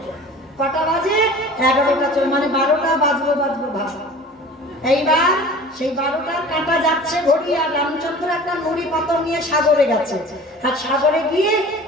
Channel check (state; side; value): normal; both; correlation 0.42